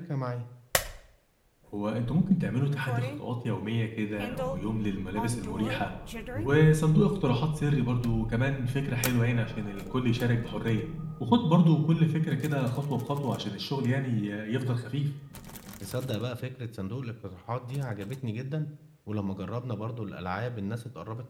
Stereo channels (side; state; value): both; identical; correlation 1.00